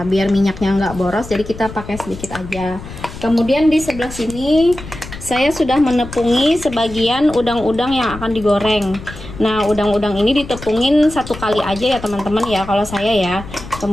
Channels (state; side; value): noise; left; rumble, 13 dB below the sound